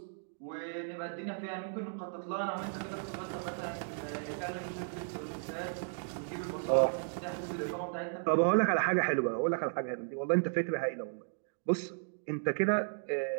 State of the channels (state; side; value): silent; left; digital silence